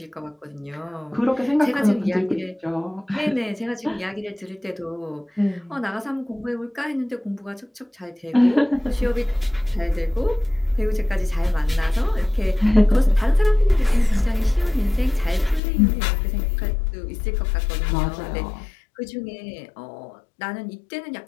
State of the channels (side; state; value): right; drops out; at 15.6 s